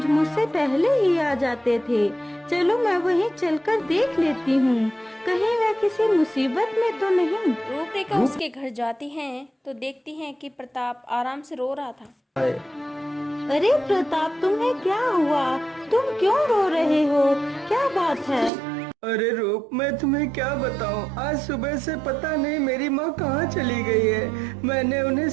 मुझसे पहले ही आ जाते थे, चलो मैं वहीं चलकर देख लेती हूँ, कहीं वह किसी मुसीबत में तो नहीं। रूपरेखा उसके घर जाती हैं तो देखती हैं कि प्रताप आराम से रो रहा था। अरे प्रताप, तुम्हें क्या हुआ? तुम क्यों रो रहे हो? क्या बात है? अरे रूप, मैं तुम्हें क्या बताऊं, आज सुबह से पता नहीं मेरी माँ कहाँ चली गई है। मैंने उन्हें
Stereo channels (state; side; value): drops out; left; at 18.5 s